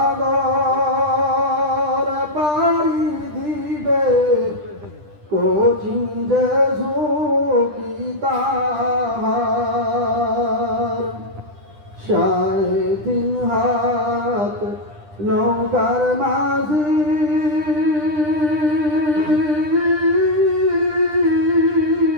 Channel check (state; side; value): late; left; 10 ms